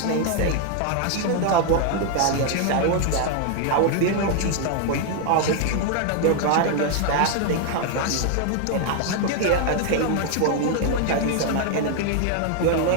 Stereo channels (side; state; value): both; different; correlation 0.00